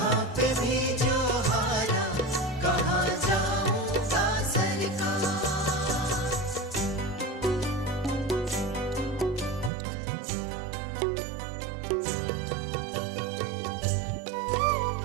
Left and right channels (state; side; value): drops out; left; at 9.7 s